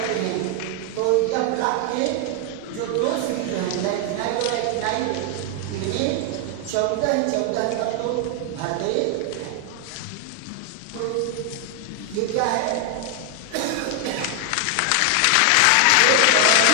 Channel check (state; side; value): different; both; correlation 0.00